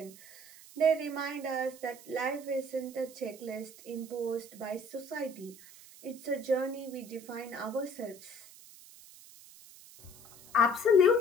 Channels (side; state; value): right; noise; hiss, 20 dB below the sound